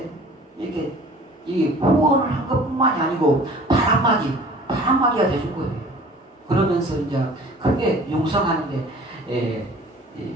이 후원을 한 것뿐만이 아니고 바람막이가 돼준 거예요. 그러면서 이제 크게 융성하는데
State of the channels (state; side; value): normal; both; correlation 0.47